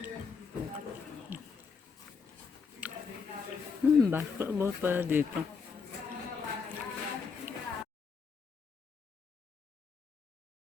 Basketball pala dito.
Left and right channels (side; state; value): right; quieter; 5.5 dB